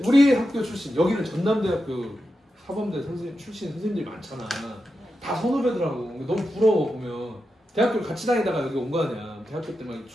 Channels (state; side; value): normal; both; correlation 0.89